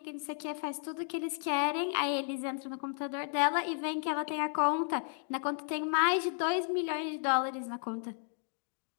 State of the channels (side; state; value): right; silent; 55 dB below the other